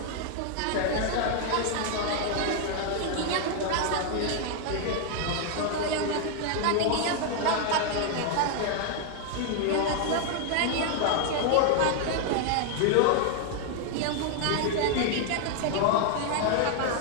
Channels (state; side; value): different; both; correlation 0.00